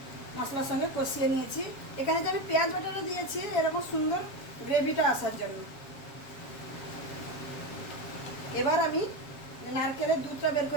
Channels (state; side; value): late; right; 7.4 ms